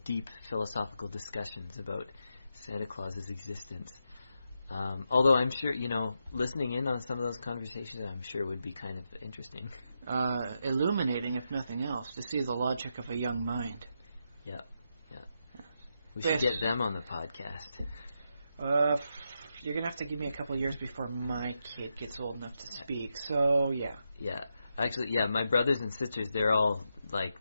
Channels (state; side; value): inverted; both; correlation -0.84